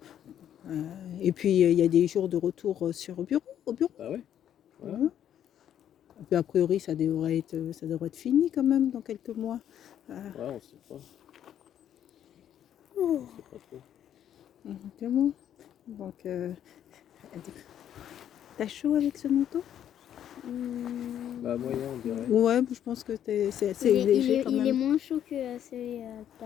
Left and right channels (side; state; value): right; quieter; 10.2 dB